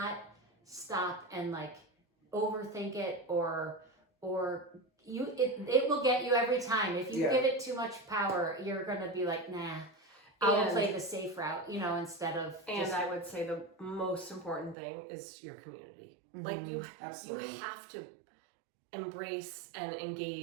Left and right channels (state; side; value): drops out; left; at 14.8 s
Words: stop and like overthink it or it will get you every time. If you give it too much power, you're gonna be like, nah. I'll play the safe route, instead of. And I would say the most important thing is your community. Mm-hmm. Like you Absolutely. have to embrace and